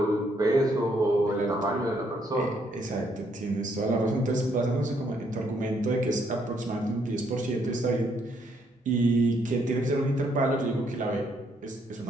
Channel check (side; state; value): both; normal; correlation 0.71